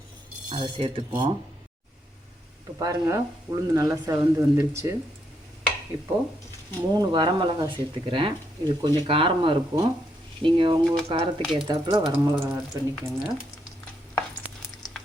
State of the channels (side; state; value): both; normal; correlation 0.77